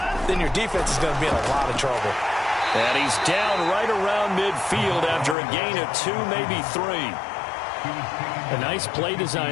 then your defense is going to be in a lot of trouble. And he's down right around midfield after a gain of 2, maybe 3. A nice play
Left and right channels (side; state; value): right; drops out; at 5.4 s